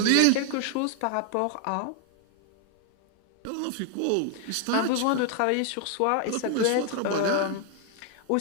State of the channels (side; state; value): both; different; correlation 0.00